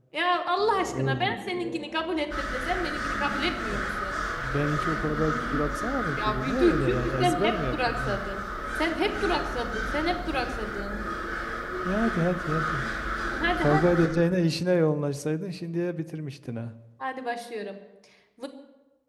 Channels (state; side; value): identical; both; correlation 1.00